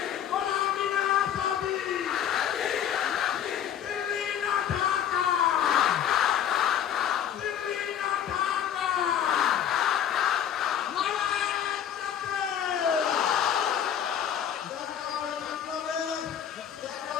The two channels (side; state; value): right; quieter; 9.5 dB